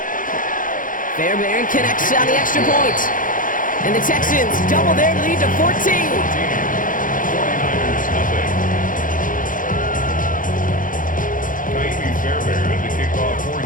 Fairbairn connects on the extra point. And the Texans double their lead to 14. Fairbairn to kick off for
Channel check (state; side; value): late; right; 0.39 ms